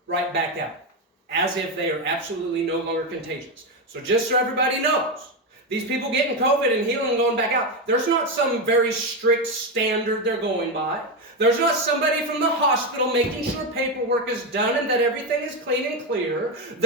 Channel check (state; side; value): normal; both; correlation 0.11